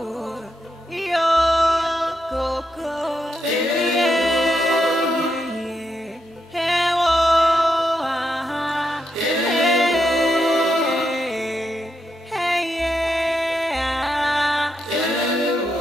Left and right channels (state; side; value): normal; both; correlation 0.82